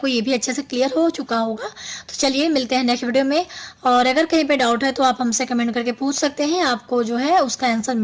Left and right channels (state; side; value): identical; both; correlation 1.00